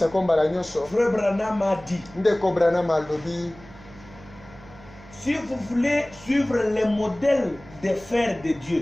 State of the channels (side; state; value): right; noise; hum, 21 dB below the sound